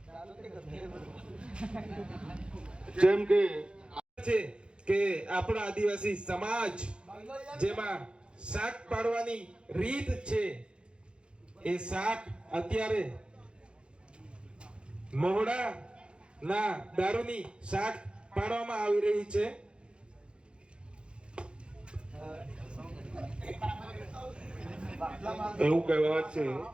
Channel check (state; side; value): late; left; 0.055 ms